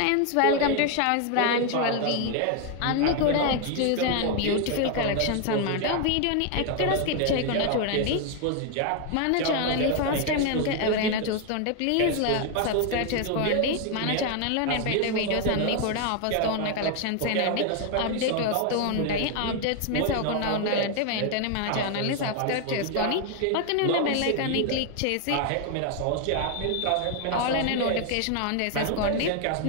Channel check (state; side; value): different; both; correlation 0.01